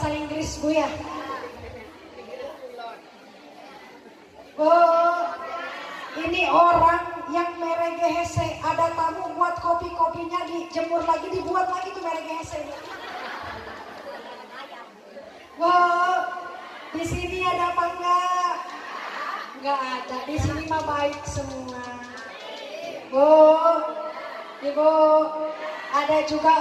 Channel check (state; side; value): identical; both; correlation 1.00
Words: Inggris Bu ya. Oh, ini orang yang meregehese, ada tamu buat kopi-kopinya dijemur lagi, dibuat lagi tuh meregehese. Wow, di sini ada apa enggak? Enggak ada, di sini mah baik semua. Ibu, ada juga